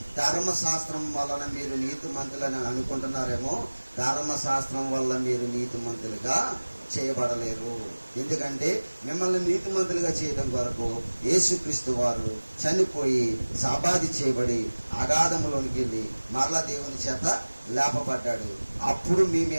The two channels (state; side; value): inverted; both; correlation -1.00